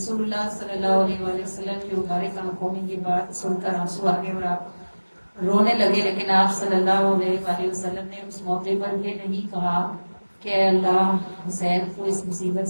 اللہ صلی اللہ علیہ وآلہ وسلم کی مبارک آنکھوں میں یہ بات سن کر آنسو آگے اور آپ رونے لگے. لیکن آپ صلی اللہ علیہ وآلہ وسلم نے اس موقع پر یہ نہیں کہا کہ اے اللہ حسین کو اس مصیبت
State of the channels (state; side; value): inverted; both; correlation -1.00